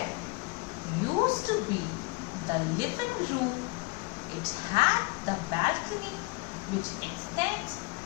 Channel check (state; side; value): quieter; right; 26.9 dB